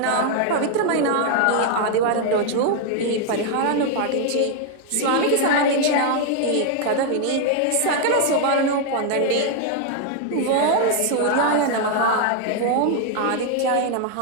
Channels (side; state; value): both; different; correlation 0.00